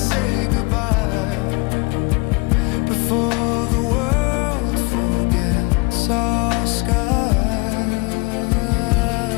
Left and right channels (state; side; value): quieter; right; 28.3 dB